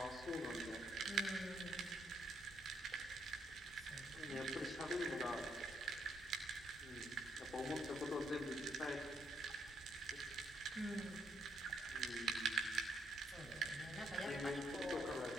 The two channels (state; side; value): normal; both; correlation 0.74